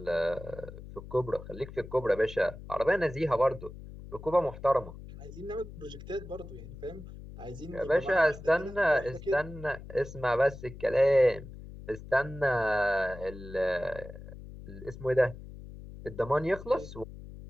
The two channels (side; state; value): left; noise; hum, 14 dB below the sound